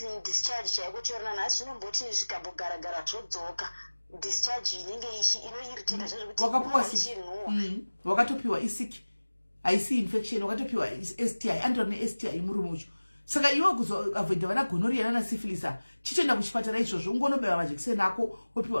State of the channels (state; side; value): inverted; both; correlation -1.00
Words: discharge chaiko chiorana nhasi zvinomboti zvikambogara zvodzoka discharge inenge inoirritata zvekuti wakapuwa wakatopiwa isiki haisi infection wakatopiwa STI andori neSTI murume ucho saka iwe kuzoavoida vana gonorrhea nana syphilis chitoenda kuchipatara izvozvo ungonobaiwa majekiseni ako